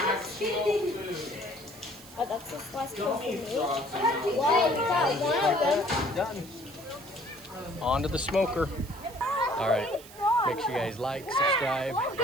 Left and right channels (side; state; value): right; noise; hiss, 19 dB below the sound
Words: that? Oh, that's just last one for me. Why? We got one of them. Done. On to the smoker. All right. Make sure you guys like, subscribe,